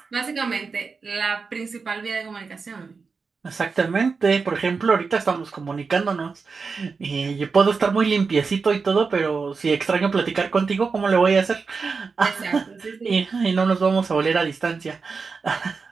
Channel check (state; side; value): quieter; left; 4.8 dB